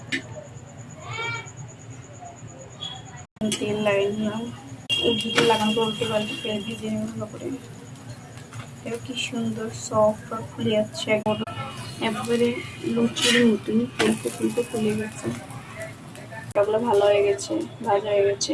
তেল লাগিয়ে নিলাম, উল্টে লাগানো করে উল্টে পাল্টে তেল ভেজে নেব ভালো করে। এটা কি সুন্দর সফট আর ফুলে যাচ্ছে, একবারে লুচির মতন ফুলতে ফুলতে ফুলে গেছে। ওগুলো ভালো হয়ে গেছে, ভাজা হয়ে গেছে।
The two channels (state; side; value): identical; both; correlation 1.00